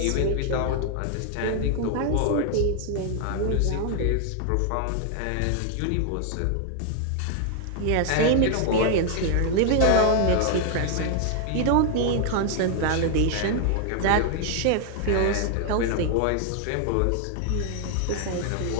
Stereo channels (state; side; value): different; both; correlation 0.00